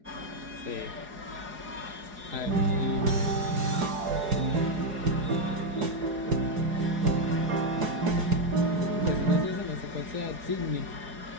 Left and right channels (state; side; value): late; left; 4.8 ms